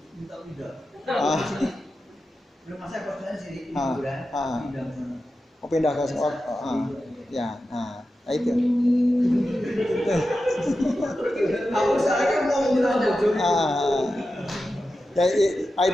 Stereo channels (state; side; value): normal; both; correlation 0.91